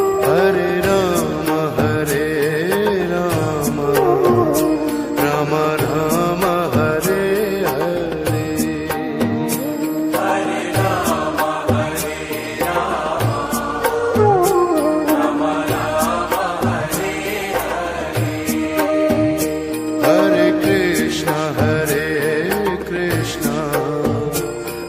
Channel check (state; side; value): identical; both; correlation 1.00